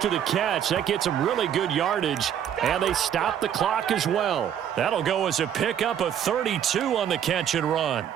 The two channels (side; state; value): left; quieter; 9.4 dB